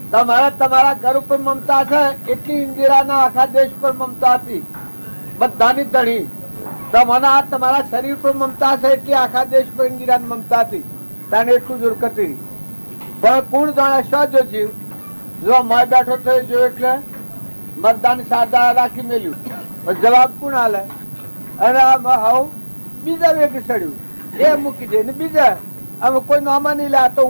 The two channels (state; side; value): inverted; both; correlation -1.00